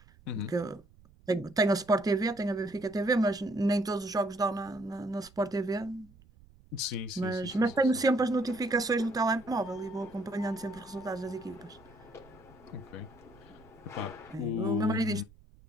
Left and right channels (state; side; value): noise; right; rumble, 26 dB below the sound